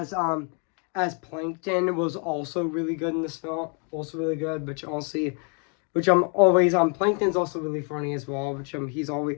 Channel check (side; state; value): right; quieter; 38.9 dB